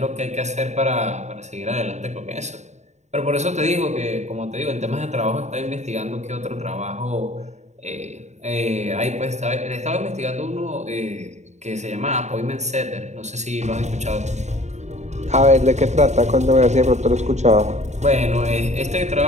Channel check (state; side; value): late; left; 0.33 ms